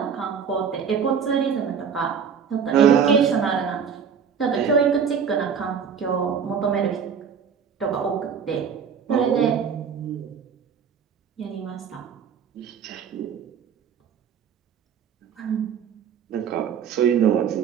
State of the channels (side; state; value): left; quieter; 7.0 dB